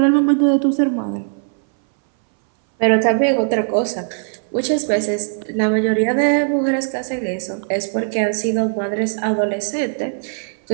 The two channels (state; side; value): silent; left; 62 dB below the other